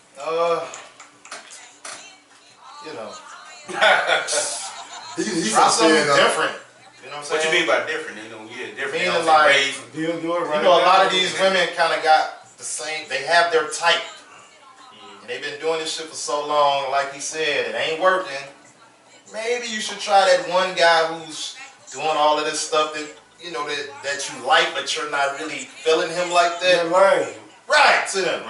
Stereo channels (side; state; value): both; identical; correlation 1.00